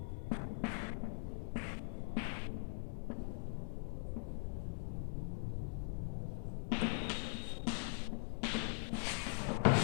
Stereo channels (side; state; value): right; silent; digital silence